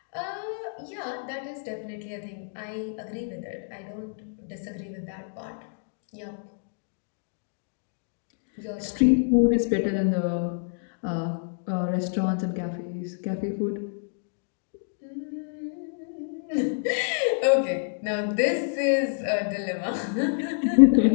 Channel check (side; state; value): right; silent; digital silence